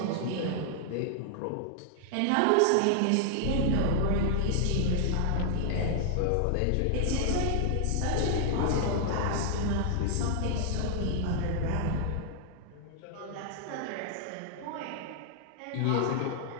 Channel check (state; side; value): different; both; correlation 0.00